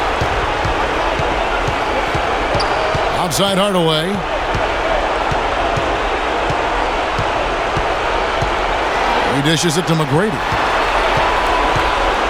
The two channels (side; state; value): both; identical; correlation 1.00